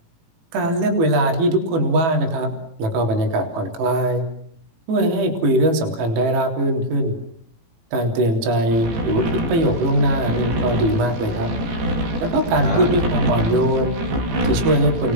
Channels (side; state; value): left; late; 18 ms